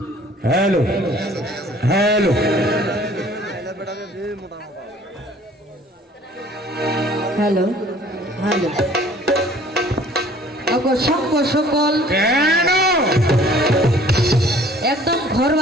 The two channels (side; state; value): both; normal; correlation 0.54